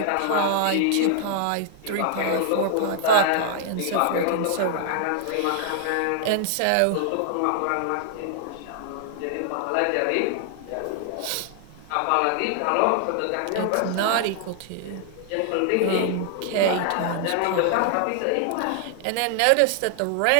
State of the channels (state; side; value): different; both; correlation 0.00